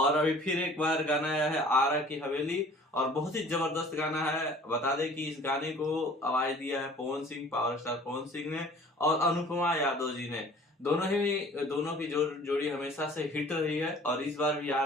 अभी फिर एक बार गाना आया है आरा की हवेली और बहुत ही जबरदस्त गाना है। बता दें कि इस गाने को आवाज दिया है पवन सिंह, पावर स्टार पवन सिंह ने और अनुपमा यादव जी ने। दोनों की जोड़ी हमेशा से हिट रही है और इस बार भी आ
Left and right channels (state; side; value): normal; both; correlation 0.49